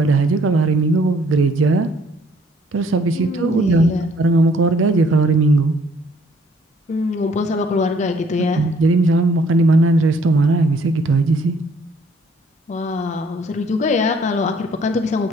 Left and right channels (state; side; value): normal; both; correlation 0.62